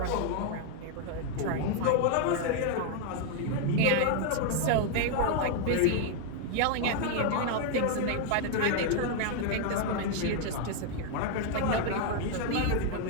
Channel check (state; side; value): different; both; correlation 0.00